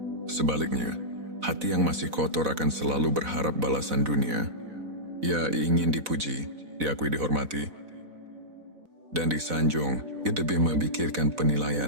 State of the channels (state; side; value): late; left; 4.0 ms